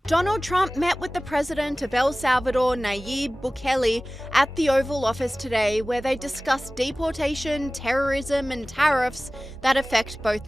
Donald Trump met with the president of El Salvador, Nayib Bukele, at the Oval Office today, where they discussed deportation, terrorism, and tariffs that affect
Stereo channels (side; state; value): both; normal; correlation 0.98